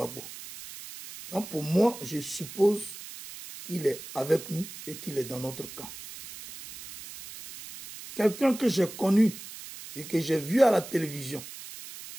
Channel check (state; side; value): noise; right; hiss, 13 dB below the sound